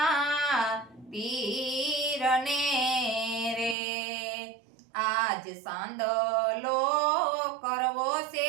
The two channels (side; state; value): left; drops out; at 3.8 s